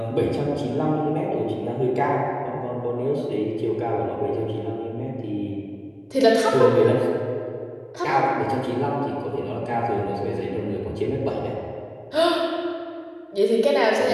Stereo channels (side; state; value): both; identical; correlation 1.00